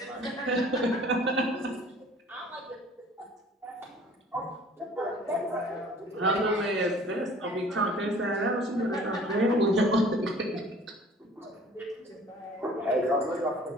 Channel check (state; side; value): normal; both; correlation 0.50